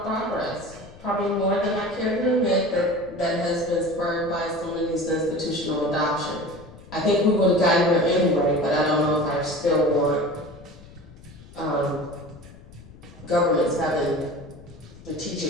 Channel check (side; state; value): left; noise; rumble, 20 dB below the sound